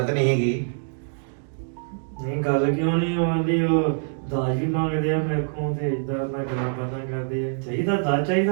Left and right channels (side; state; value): left; silent; digital silence